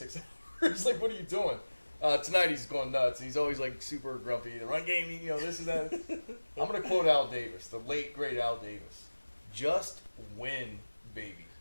hours. Like, what are you doing? Tonight he's going nuts. He's always like super grumpy. The run game, this and that. I'm going to quote Al Davis, the late, great Al Davis. Just win, baby.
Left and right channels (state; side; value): inverted; both; correlation -1.00